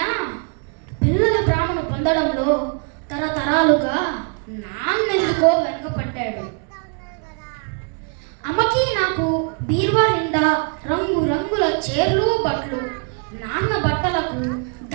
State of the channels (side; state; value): left; quieter; 39.8 dB